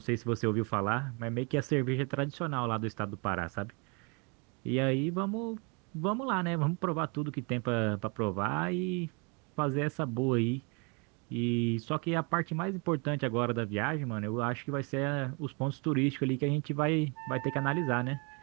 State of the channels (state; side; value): quieter; left; 32.9 dB